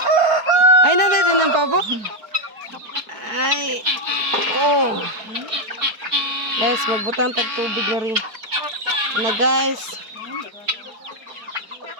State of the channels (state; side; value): late; left; 4.7 ms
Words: Ay, natin din ng pabo. Ay. Oh. Guys, magbutang tagtubig na rin. Na guys.